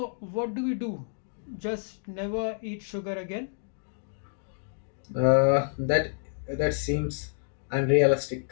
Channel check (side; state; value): right; silent; digital silence